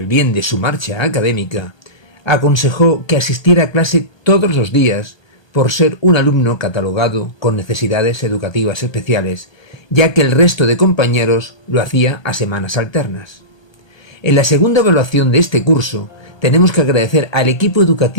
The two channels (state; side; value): late; right; 1.2 ms